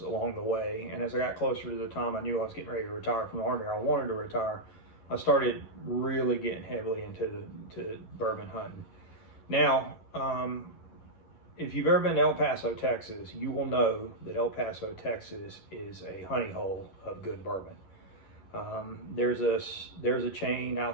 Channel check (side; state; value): right; late; 11 ms